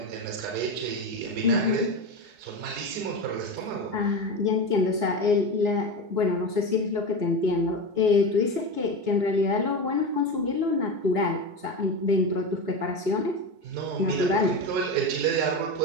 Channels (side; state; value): left; late; 4.1 ms